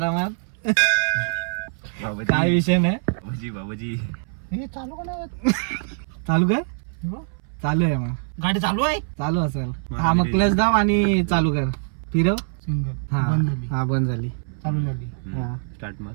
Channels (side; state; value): left; silent; 61 dB below the other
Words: बाबाजी. काय विषय नाही. बाबाजी बाबाजी. हे चालू का नाही होत? चालू काय? हो. चालू आहे मग. गाडी चालू आहे. चालू असेल. हा मग क्लच दाब आणि चालू कर. फिरव. सिंगल हा बंद झाली. हा बंद झाली. चालू झाली. हा. स्टार्ट मग.